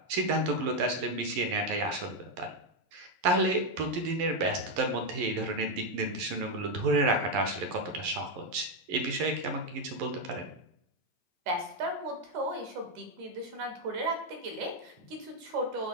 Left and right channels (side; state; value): left; late; 11 ms